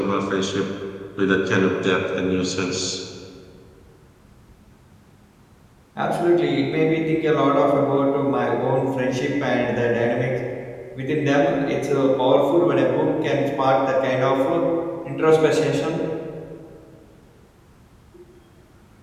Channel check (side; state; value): both; identical; correlation 1.00